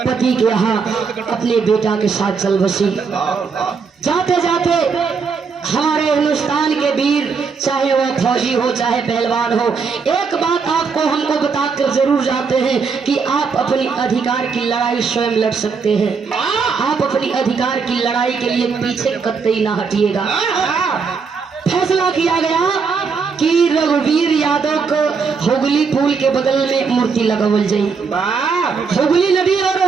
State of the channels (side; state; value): left; quieter; 5.4 dB